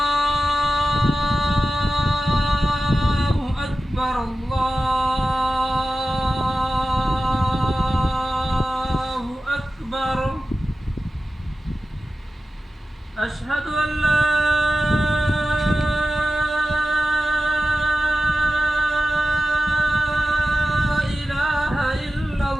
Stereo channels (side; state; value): both; normal; correlation 0.94